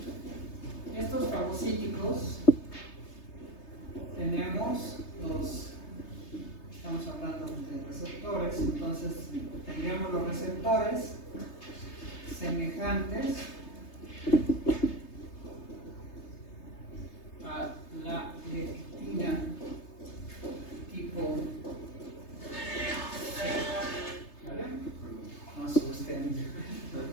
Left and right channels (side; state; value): right; late; 3.3 ms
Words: Estos fagocíticos tenemos los, estamos hablando de receptores, entonces tendríamos los receptores semejantes a la lectina tipo C. ¿Vale? No asusten.